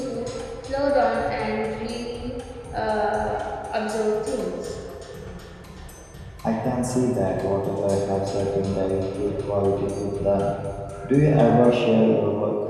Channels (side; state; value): both; identical; correlation 1.00